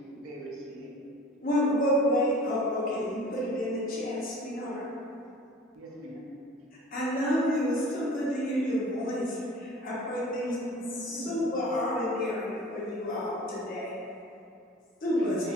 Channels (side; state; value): both; normal; correlation 0.44